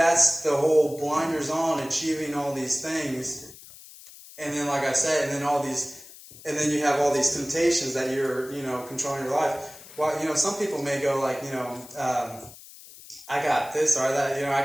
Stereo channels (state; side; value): noise; left; hiss, 18 dB below the sound